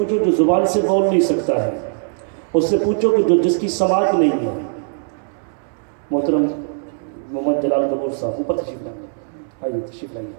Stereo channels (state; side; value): silent; left; digital silence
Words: جو زبان سے بول نہیں سکتا ہے، اس سے پوچھو کہ جو جس کی سماعت نہیں ہے۔ محترم محمد جلال گبور صاحب اوپر تشریف لائیے، آئیے تشریف لائیے،